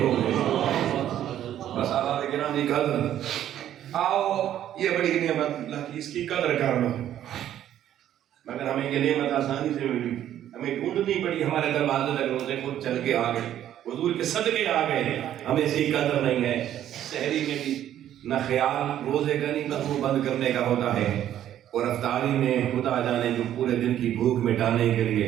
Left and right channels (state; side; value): quieter; left; 11.4 dB